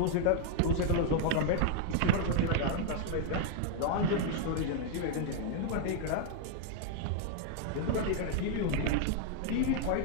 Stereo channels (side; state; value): both; different; correlation 0.00